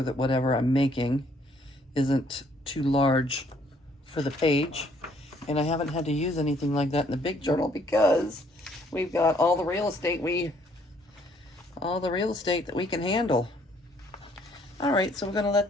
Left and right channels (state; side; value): normal; both; correlation 0.65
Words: that whatever I'm making isn't too large for the page. And I haven't had to use anything like that in the big journal because we've got all the real estate that we can handle. All right, so we're gonna let